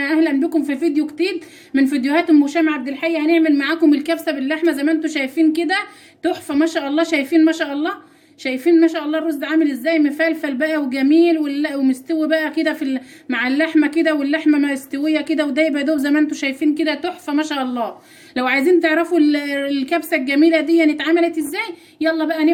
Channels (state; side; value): identical; both; correlation 1.00